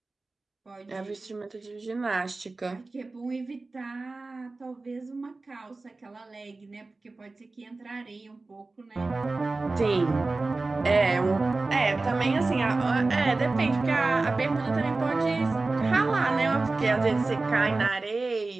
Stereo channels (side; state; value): left; quieter; 3.5 dB